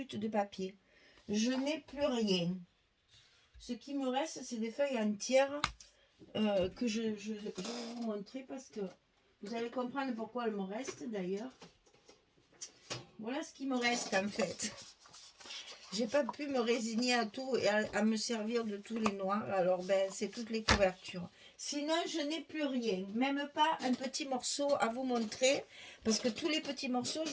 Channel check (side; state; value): both; identical; correlation 1.00